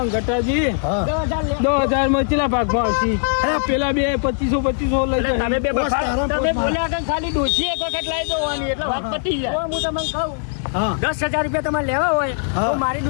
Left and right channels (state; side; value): silent; right; 62 dB below the other